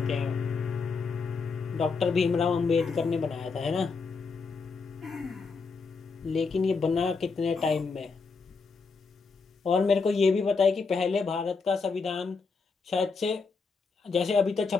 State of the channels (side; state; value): right; quieter; 4.7 dB